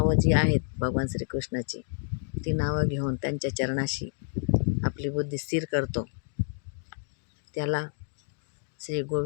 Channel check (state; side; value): silent; right; digital silence